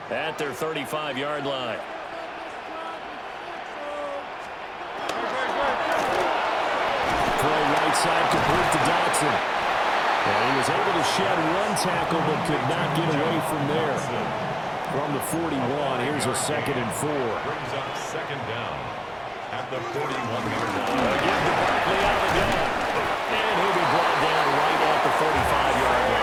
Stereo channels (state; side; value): identical; both; correlation 1.00